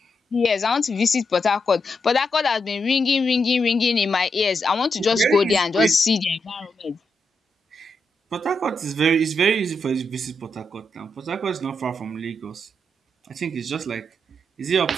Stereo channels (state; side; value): normal; both; correlation 0.83